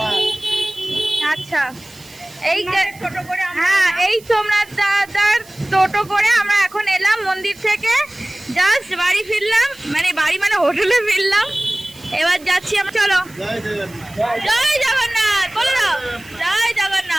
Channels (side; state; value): right; noise; hiss, 23 dB below the sound